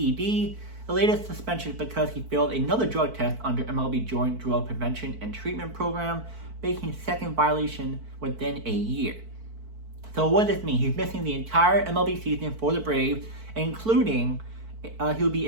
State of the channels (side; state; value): left; late; 4.5 ms